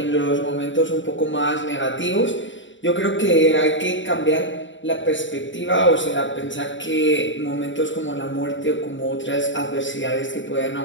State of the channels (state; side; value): late; right; 0.55 ms